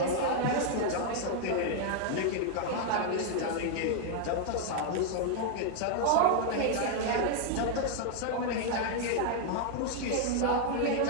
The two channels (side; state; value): both; different; correlation 0.00